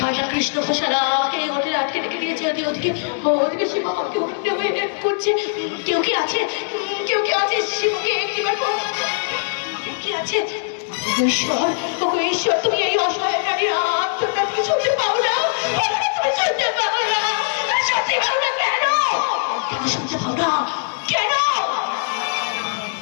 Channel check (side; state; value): right; silent; digital silence